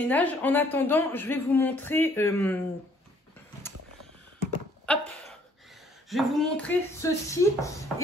En attendant, je vais vous montrer... hop, je vais vous montrer ceci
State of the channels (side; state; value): both; normal; correlation 0.62